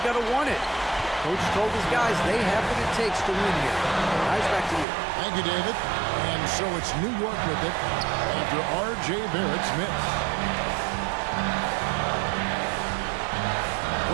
got to want it. Coach told his guys they have what it takes to win here. Guys, back to you. Thank you, David. And so it's New York with it after R.J. Barrett's miss.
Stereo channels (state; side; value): drops out; left; at 4.9 s